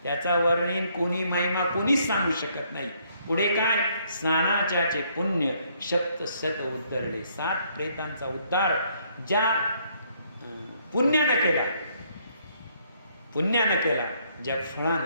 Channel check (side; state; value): both; inverted; correlation -0.68